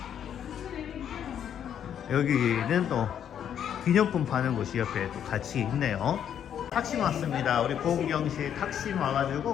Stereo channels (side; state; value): right; quieter; 9.2 dB